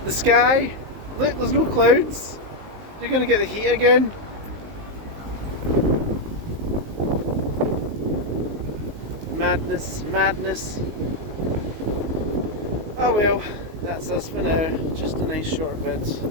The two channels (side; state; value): left; late; 19 ms